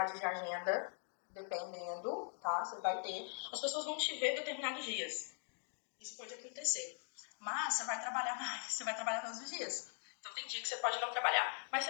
de agenda, dependendo, tá? Você vai ter. As pessoas vão te ver determinados dias. Isso pode acontecer. Mas você vai trabalhar mais, você vai trabalhar todos os dias. Então tem dia que você pode não trabalhar, mas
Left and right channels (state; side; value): silent; right; 50 dB below the other